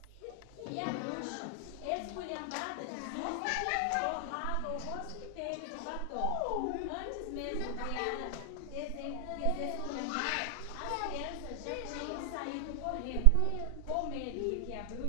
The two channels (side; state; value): both; different; correlation 0.00